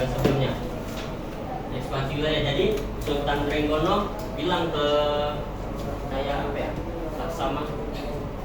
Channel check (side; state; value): both; identical; correlation 1.00